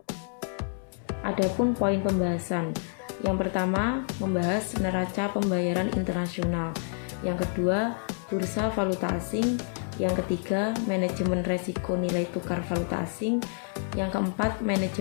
Adapun poin pembahasan, yang pertama membahas neraca pembayaran internasional, yang kedua bursa valuta asing, yang ketiga manajemen resiko nilai tukar valuta asing, yang keempat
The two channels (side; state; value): right; silent; 59 dB below the other